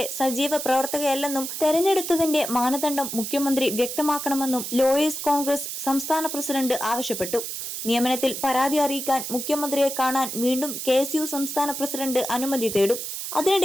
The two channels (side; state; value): right; noise; hiss, 6 dB below the sound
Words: സജീവ പ്രവർത്തകയല്ലെന്നും തെരഞ്ഞെടുത്തതിന്റെ മാനദണ്ഡം മുഖ്യമന്ത്രി വ്യക്തമാക്കണമെന്നും ലോയേഴ്സ് കോൺഗ്രസ് സംസ്ഥാന പ്രസിഡന്റ് ആവശ്യപ്പെട്ടു. നിയമനത്തിൽ പരാതി അറിയിക്കാൻ മുഖ്യമന്ത്രിയെ കാണാൻ വീണ്ടും KSU സംസ്ഥാന പ്രസിഡന്റ് അനുമതി തേടും.